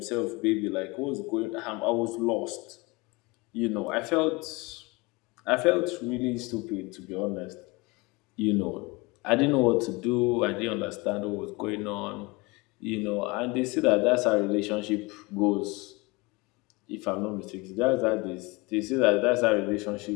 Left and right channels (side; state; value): right; quieter; 25.0 dB